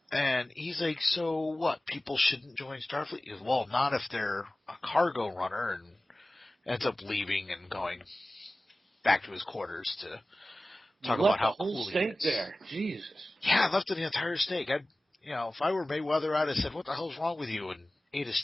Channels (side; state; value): both; normal; correlation 0.97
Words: And he's like, so what? People shouldn't join Starfleet? He goes, well, not if they're a cargo runner, and ends up leaving and going back to his quarters to talk about how cool he is. There, Jesus. Yeah, I left the entire steak. If I were Mayweather, I'd have said, what the hell's wrong with you? And ate a